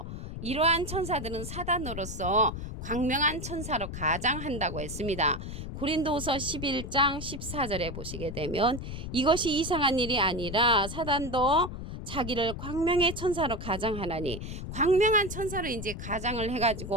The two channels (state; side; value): noise; left; rumble, 7 dB below the sound